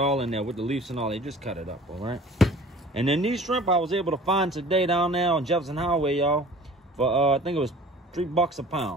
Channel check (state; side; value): normal; both; correlation 0.46